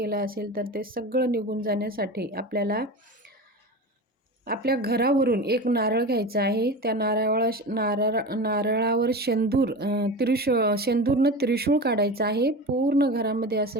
असेल, तर ते सगळं निघून जाण्यासाठी आपल्याला आपल्या घरावरून एक नारळ घ्यायचा आहे. त्या नारळावर शेंदूरनं त्रिशूळ काढायचं आहे. पूर्ण घरामध्ये असं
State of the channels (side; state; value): both; normal; correlation 0.29